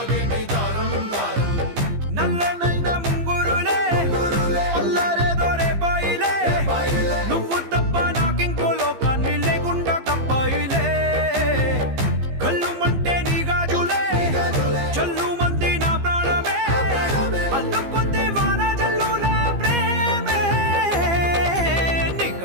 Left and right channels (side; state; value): left; late; 15 ms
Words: దారం దారం. నల్లనైన ముంగురులే అల్లారేదో రేపాయిలే, నువ్వు తప్ప నాకింకో లోకాన్ని లేకుండా కప్పాయిలే. కళ్ళుమంటే నీ గాజులే, చల్లు మంది నా ప్రాణమే, అల్లుకుంది వాన జల్లుల ప్రేమే. నీ